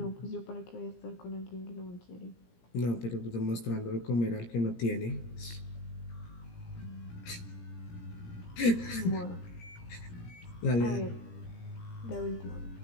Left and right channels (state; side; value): late; right; 17 ms